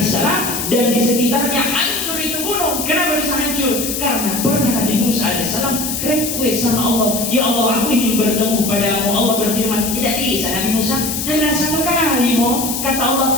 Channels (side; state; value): left; noise; hiss, 3 dB below the sound